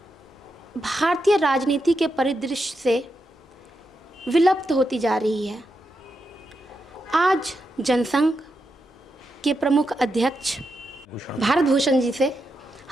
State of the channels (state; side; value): normal; both; correlation 0.85